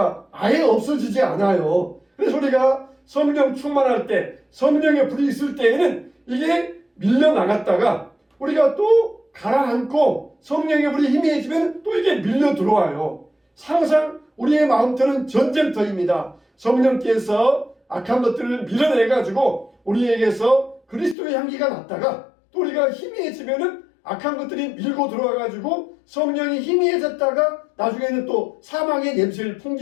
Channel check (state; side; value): drops out; right; at 21.2 s